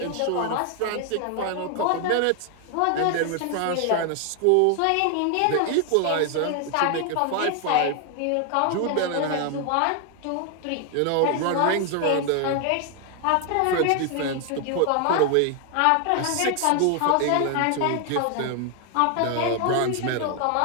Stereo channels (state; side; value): different; both; correlation 0.00